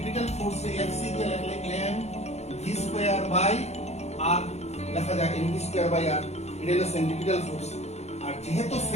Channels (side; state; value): right; late; 0.31 ms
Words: ফোর্স Fc দিয়ে লিখলে mv²/r লেখা যায়, mv²/r। এটা হলো সেন্ট্রিপিটাল ফোর্স। আর যেহেতু